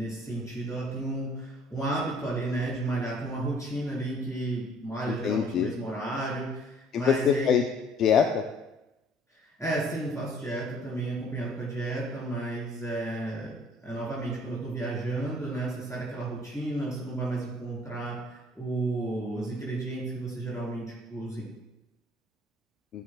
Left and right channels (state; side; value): normal; both; correlation 0.56